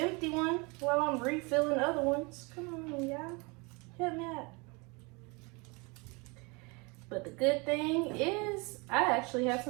one while I'm refilling other ones. Come on, y'all. Help me out. But the good thing is I actually have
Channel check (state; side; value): quieter; left; 28.7 dB